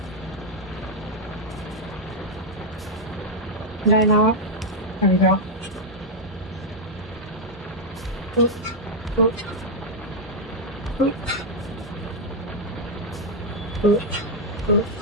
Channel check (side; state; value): both; normal; correlation -0.01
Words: Did I not? There we go. Oop, oop, oop, oop, oop,